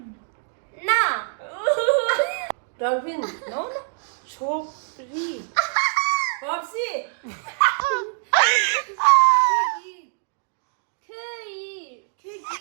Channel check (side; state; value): left; silent; 62 dB below the other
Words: 나. Darwin, no? Chopri. Popsi.